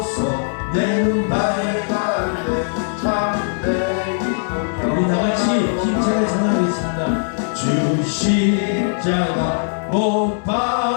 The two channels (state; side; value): silent; right; 62 dB below the other